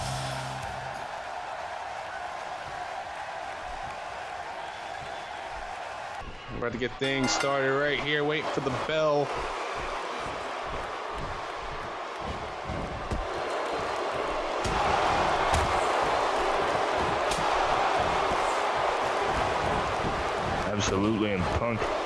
We're about to get things started right here. Waiting for the bell. Absolutely, and Punk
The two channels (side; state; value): both; identical; correlation 1.00